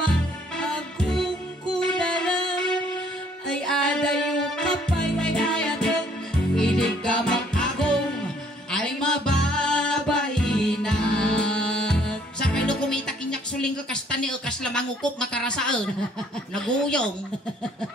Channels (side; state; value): both; normal; correlation 0.62